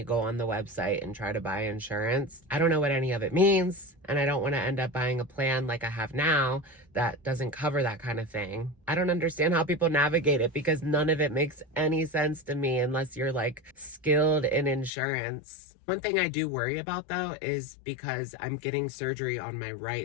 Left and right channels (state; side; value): drops out; right; at 14.9 s